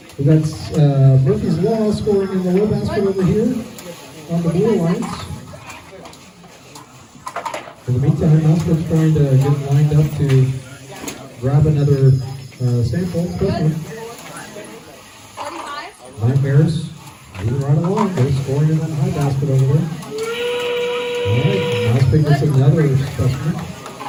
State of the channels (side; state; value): both; identical; correlation 1.00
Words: We got Murphy's Law scoring in the low basket over here on the Blue Alliance. In the meantime, Mousepit's trying to get lined up to grab another sample specimen. Nightmares moving right along. They're scoring in that high basket over there. All right, Mousepit gets another specimen.